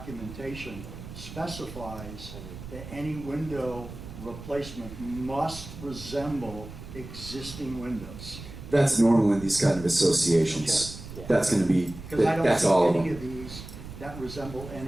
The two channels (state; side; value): noise; right; rumble, 13 dB below the sound